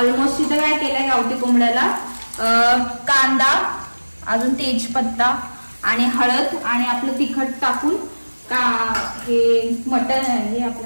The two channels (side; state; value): both; inverted; correlation -1.00